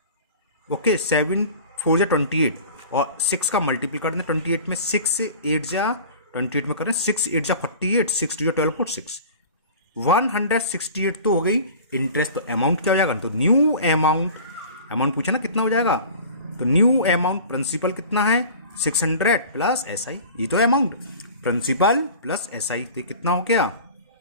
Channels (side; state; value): both; inverted; correlation -0.41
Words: ओके 7 4 जा 28 और 6 का मल्टीपल कर दें 28 में, 6 से 8 जा 28 में करें, 6 8 जा 48, 6 2 जा 12 4 6, 168 तो हो गई इंटरेस्ट। तो अमाउंट क्या हो जाएगा, तो न्यू अमाउंट, अमाउंट पूछा ना कितना हो जाएगा, तो न्यू अमाउंट प्रिंसिपल कितना है 600 प्लस एसआई, ये तो अमाउंट प्रिंसिपल प्लस एसआई, तो कितना हो गया